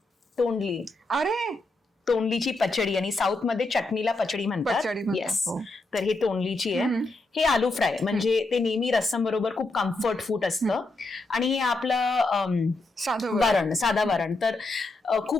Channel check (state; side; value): quieter; right; 3.1 dB